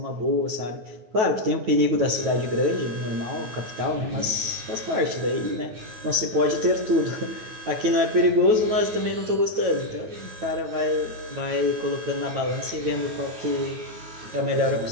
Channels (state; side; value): late; left; 9.2 ms